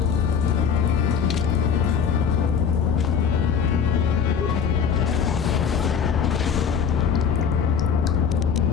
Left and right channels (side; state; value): right; quieter; 7.0 dB